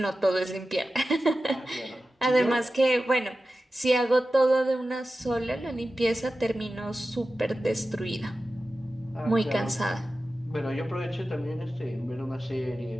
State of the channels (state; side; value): normal; both; correlation 0.94